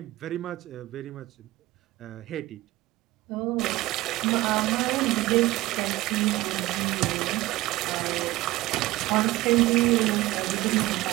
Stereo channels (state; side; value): quieter; left; 18.1 dB